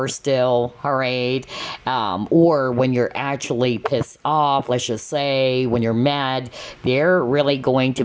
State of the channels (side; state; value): both; identical; correlation 1.00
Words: still, all right? Or when you're actually pissed off, let's just say, when you're mad, they're really going to